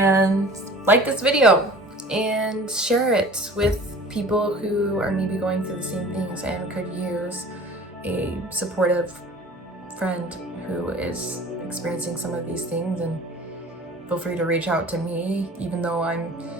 like this video and share it with people who are maybe going through the same things and could use a supportive friend who is experiencing some of these things. And feel free to reach out to me. Even though I'm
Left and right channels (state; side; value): normal; both; correlation 0.44